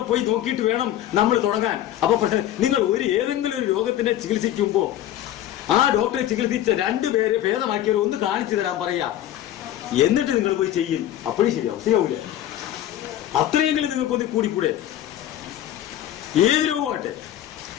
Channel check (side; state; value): right; quieter; 12.3 dB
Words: പോയി നോക്കിയിട്ട് വേണം നമ്മൾ തുടങ്ങാൻ. അപ്പൊ പക്ഷെ നിങ്ങൾ ഏതെങ്കിലും ഒരു രോഗത്തിനെ ചികിത്സിക്കുമ്പോ ആ ഡോക്ടറെ ചികിത്സിച്ച 2 പേരെ ഭേദമാക്കിയവരെ ഒന്ന് കാണിച്ചു തരാൻ പറയാം. എന്നിട്ട് നിങ്ങൾ പോയി ചെയ്യും. അപ്പോഴും ശരിയാവൂല. അത്രയെങ്കിലും നിങ്ങൾക്കൊന്ന് കൂടിക്കൂടെ? ഏത് രോഗമാട്ടെ